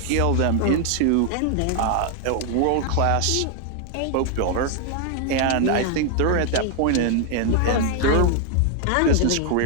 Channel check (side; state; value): both; different; correlation 0.00